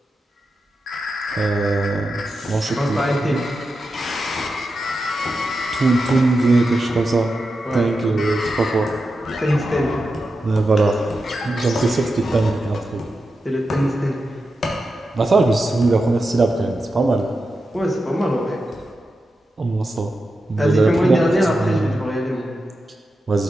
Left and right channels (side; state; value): both; normal; correlation 0.90